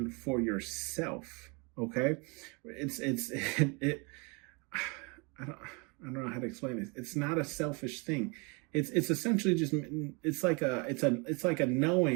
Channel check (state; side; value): quieter; left; 30.9 dB